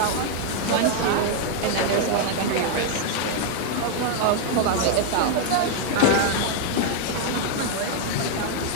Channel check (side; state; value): both; different; correlation 0.00